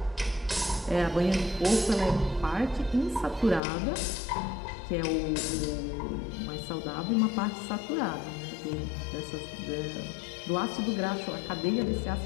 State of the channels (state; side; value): drops out; right; at 3.6 s